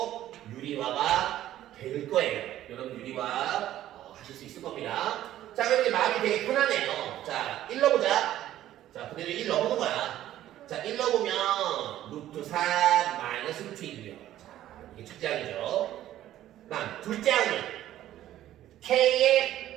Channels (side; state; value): left; quieter; 13.0 dB